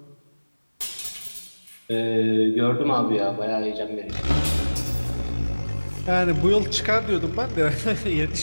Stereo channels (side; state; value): both; inverted; correlation -1.00